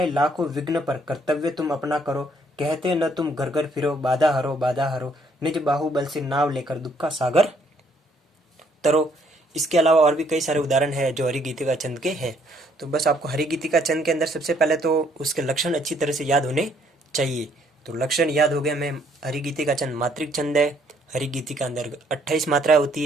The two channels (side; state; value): both; normal; correlation 0.66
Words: लाखों विघ्न पर कर्तव्य तुम अपना करो, कहते न तुम घर घर फिरो, बाधा हरो बाधा हरो, निज बाहुबल से नाव लेकर दुख का सागर तरो। इसके अलावा और भी कई सारे उदाहरण है जो हरि गीतिका छंद के हैं। तो बस आपको हरि गीतिका छंद के अंदर सबसे पहले तो उसके लक्षण अच्छी तरह से याद होने चाहिए। तो लक्षण याद हो गए हमें, हरि गीतिका छंद मात्रिक छंद है, हरि गीति के अंदर 28 मात्राएं होती